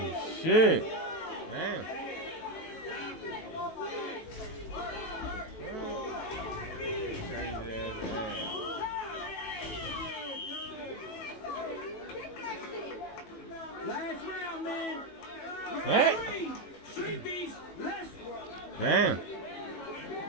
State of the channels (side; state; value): right; late; 18 ms